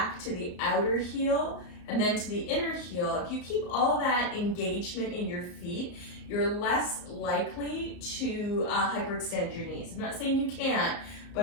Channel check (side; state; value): right; late; 34 ms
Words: to the outer heel, and then to the inner heel. If you keep all that engagement in your feet, you're less likely to hyperextend your knees. I'm not saying you can't,